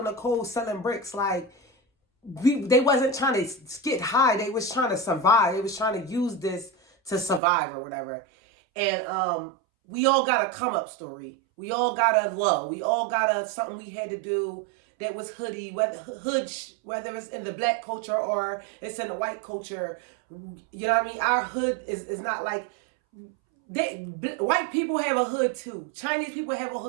the cold selling bricks. Like, they wasn't trying to get high. They was trying to survive. They was trying to use this to survive or whatever. And we all got a come up story. We all got a low. We all got a something we had to do that was hoodie, whether it's in the black culture or it's in the white culture. You know what I mean? Our hood is not like white people have a hood too. Chinese people have a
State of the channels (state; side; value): drops out; left; at 7.4 s